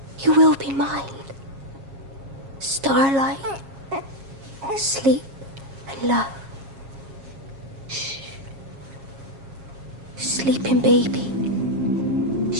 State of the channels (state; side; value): late; left; 7.4 ms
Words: you will be mine. Starlight, sleep and love. Shh. Sleeping baby,